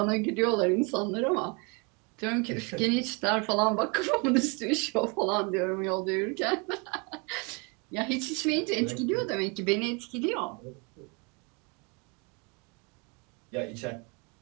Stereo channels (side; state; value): left; quieter; 31.6 dB